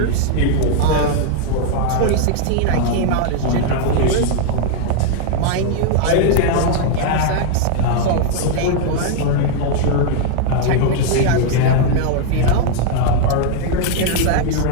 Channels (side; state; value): both; different; correlation 0.00